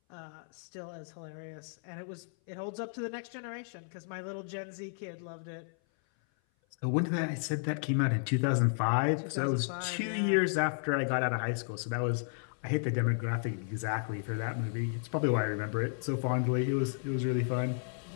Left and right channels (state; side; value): silent; right; 56 dB below the other